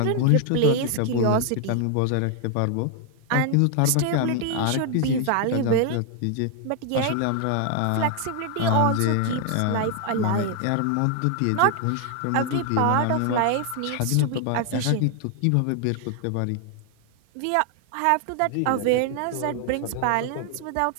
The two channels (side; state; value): both; different; correlation 0.00